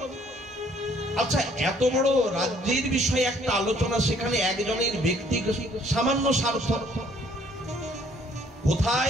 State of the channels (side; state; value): both; normal; correlation 0.61